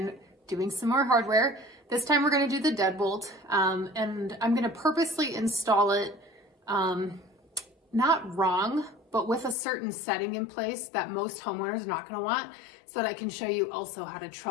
doing some more hardware. This time we're going to do the Deadbolt, and I'm going to purposely install it not wrong, but with a certain setting in place that most homeowners are not going to want, so that I can show you also how to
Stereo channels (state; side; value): drops out; right; at 9.6 s